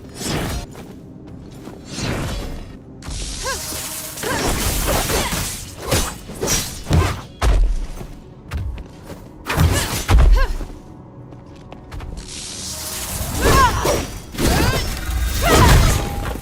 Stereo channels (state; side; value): identical; both; correlation 1.00